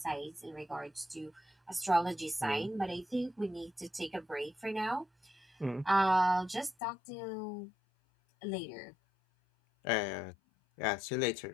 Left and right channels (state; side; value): drops out; right; at 6.8 s